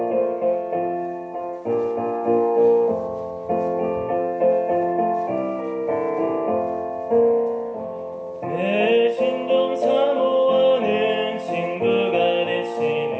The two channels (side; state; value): both; identical; correlation 1.00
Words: 내 신종 사모하는 친구가